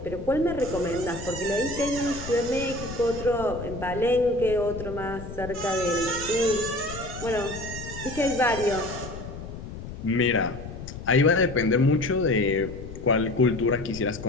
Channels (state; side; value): noise; left; rumble, 11 dB below the sound